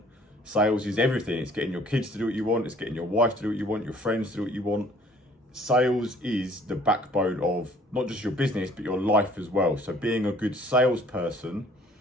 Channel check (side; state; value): both; normal; correlation 0.56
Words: Sales is everything. It's getting your kids to do what you want. It's getting your wife to do what you want, your friends to do what you want. Sales is the backbone of not just your business, but your life as well. So being a good salesperson